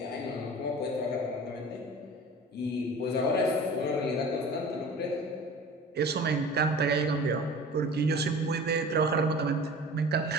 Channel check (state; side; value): normal; both; correlation 0.40